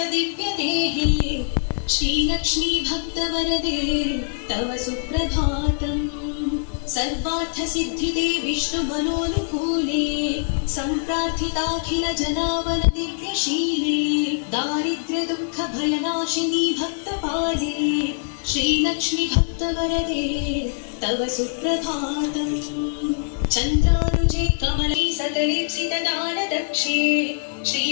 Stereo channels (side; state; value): right; silent; 63 dB below the other